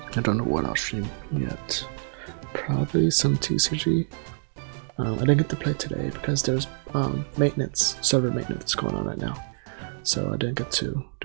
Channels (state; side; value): silent; left; digital silence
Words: I don't know what I'll stream yet. Probably some TCG. I didn't get to play today because there's server maintenance going on right now. So I didn't get to